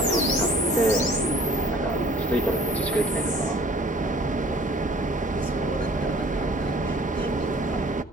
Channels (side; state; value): both; normal; correlation 0.52